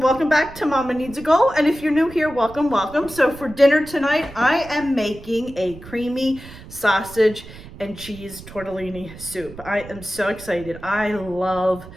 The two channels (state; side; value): noise; right; rumble, 16 dB below the sound